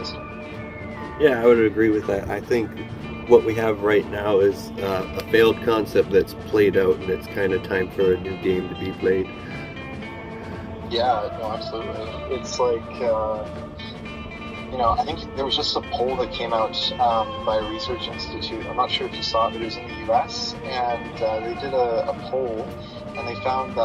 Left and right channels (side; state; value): both; identical; correlation 1.00